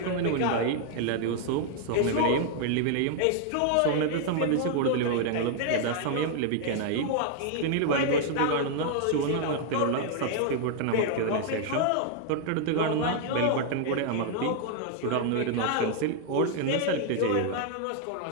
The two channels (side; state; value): both; different; correlation 0.00